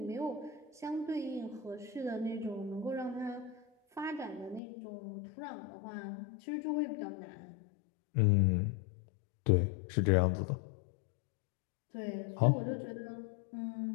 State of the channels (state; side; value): drops out; right; at 4.6 s